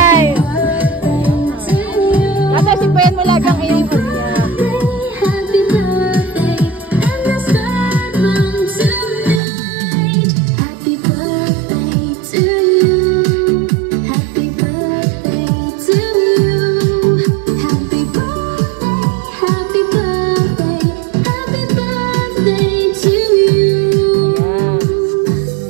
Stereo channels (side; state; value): left; drops out; at 9.4 s